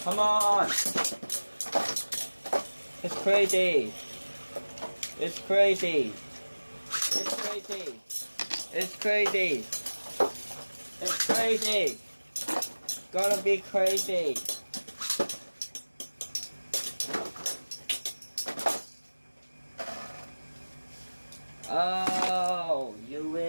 Come on! It's crazy! It's crazy! It's crazy! It's crazy! It's crazy! Gonna be crazy! Oh, you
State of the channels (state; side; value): inverted; both; correlation -1.00